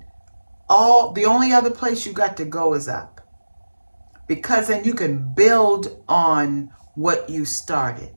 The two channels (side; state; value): both; inverted; correlation -1.00